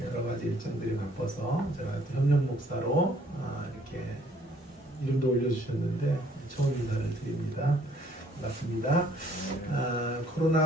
여러 가지 일정들이 바빠서 제가 협력 목사로 이렇게 이름도 올려주셨는데 처음 인사를 드립니다. 반갑습니다.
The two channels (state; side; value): normal; both; correlation 0.62